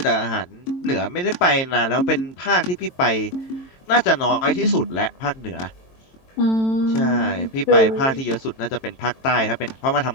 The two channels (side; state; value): right; late; 22 ms